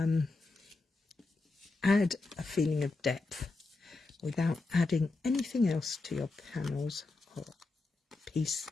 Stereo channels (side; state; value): right; quieter; 3.5 dB